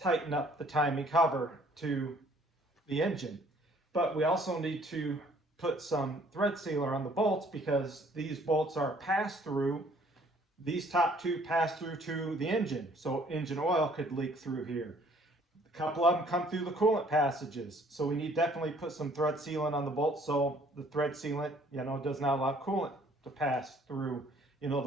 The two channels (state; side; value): normal; both; correlation 0.59